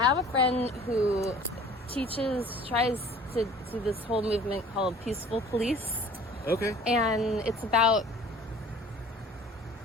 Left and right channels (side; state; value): both; normal; correlation 0.48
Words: have a friend who tries to do this whole movement called peaceful police. Okay. And it's about